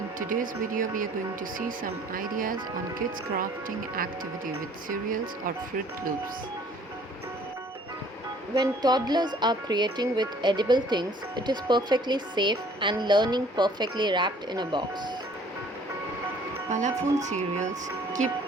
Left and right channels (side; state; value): both; normal; correlation 0.55